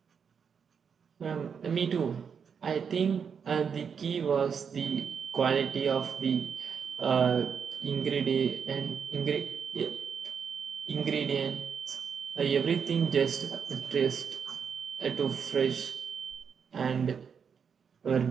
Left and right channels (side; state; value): left; quieter; 6.7 dB